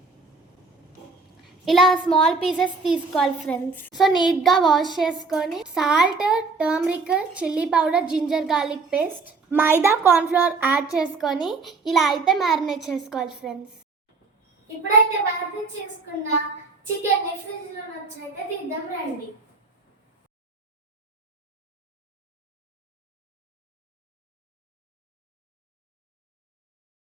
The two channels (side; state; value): left; quieter; 4.2 dB